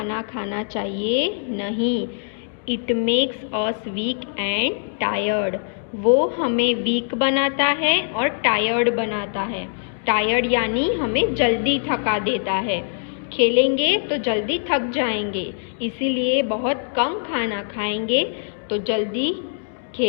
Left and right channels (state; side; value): silent; right; digital silence